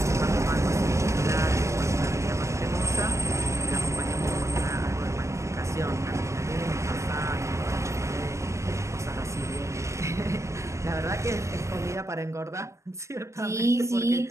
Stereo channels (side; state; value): left; late; 0.14 ms